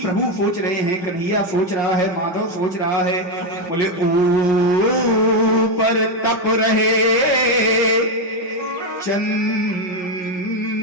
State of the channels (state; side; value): late; right; 5.6 ms